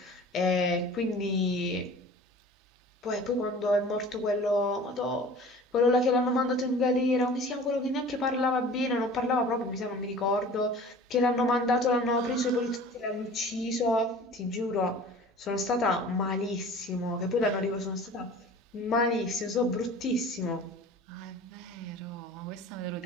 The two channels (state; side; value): normal; both; correlation 0.43